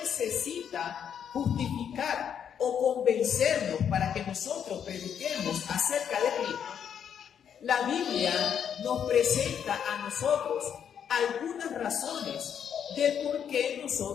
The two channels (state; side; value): quieter; right; 8.3 dB